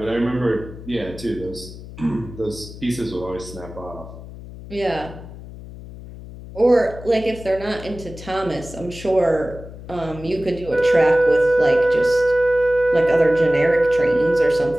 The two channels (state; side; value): noise; left; hum, 15 dB below the sound